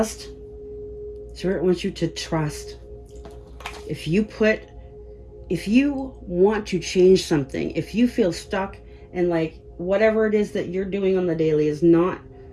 Spirit wants you to trust. If you want to change something, if you feel stuck and like whatever it is that you're doing on the daily is not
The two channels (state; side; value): identical; both; correlation 1.00